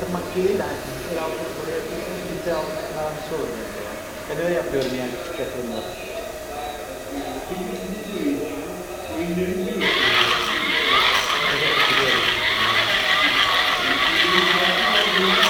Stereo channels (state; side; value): identical; both; correlation 1.00